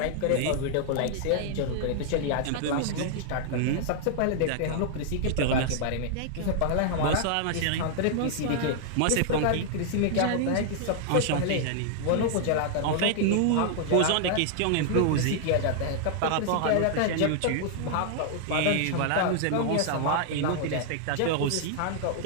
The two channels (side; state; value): both; different; correlation -0.01